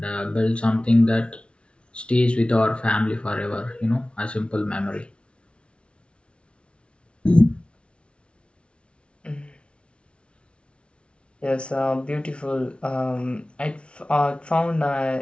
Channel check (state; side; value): late; right; 0.059 ms